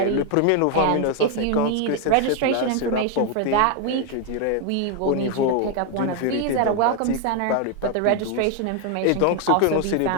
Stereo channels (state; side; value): different; both; correlation 0.01